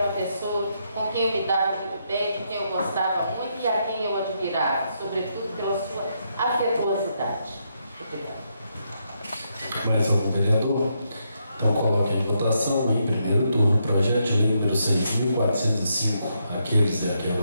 uma pessoa com quem eu me dava muito bem, com quem eu gostava muito e a quem eu admirava, sobretudo pela sua afetuosidade. Obrigada. Mais algum vereador? Então coloque em votação em primeiro turno o projeto de lei número 6.405. Aqueles e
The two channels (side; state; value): both; inverted; correlation -0.79